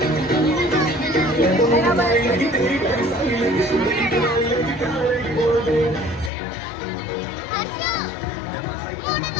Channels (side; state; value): right; drops out; at 6.3 s